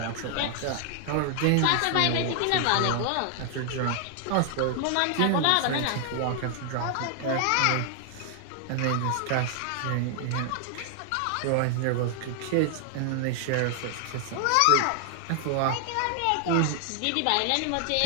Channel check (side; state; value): both; different; correlation 0.00